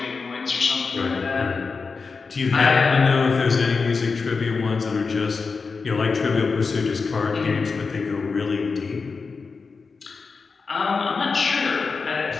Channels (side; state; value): right; quieter; 4.7 dB